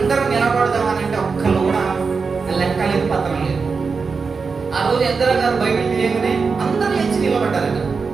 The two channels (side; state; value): left; quieter; 5.0 dB